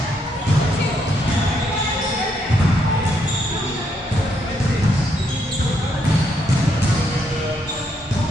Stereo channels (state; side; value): normal; both; correlation 0.75